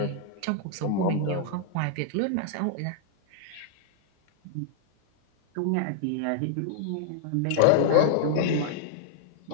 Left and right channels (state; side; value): different; both; correlation 0.00